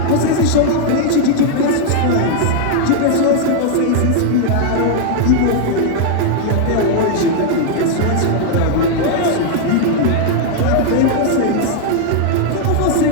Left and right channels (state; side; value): different; both; correlation 0.00